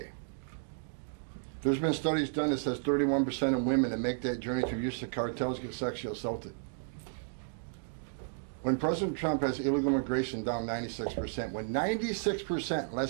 There's been studies done that says 31% of women that make that journey through use of cartels get sexually assaulted. When President Trump has illegal immigration down 96%, when 96%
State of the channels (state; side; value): silent; left; digital silence